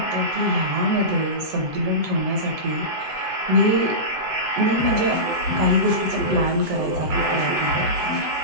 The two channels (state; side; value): late; left; 7.8 ms